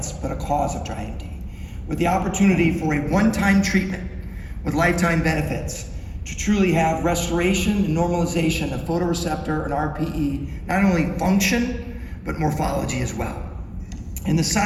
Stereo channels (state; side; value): identical; both; correlation 1.00